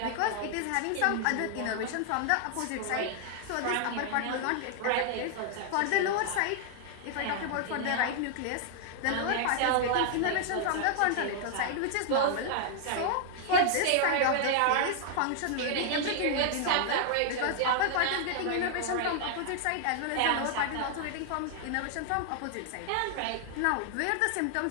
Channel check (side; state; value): both; different; correlation 0.00